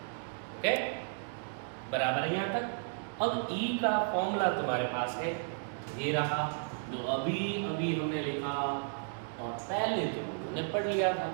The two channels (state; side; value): silent; left; digital silence